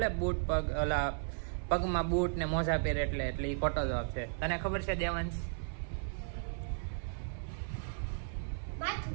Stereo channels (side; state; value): left; silent; 54 dB below the other